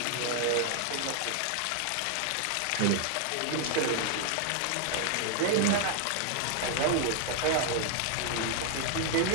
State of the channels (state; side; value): different; both; correlation 0.00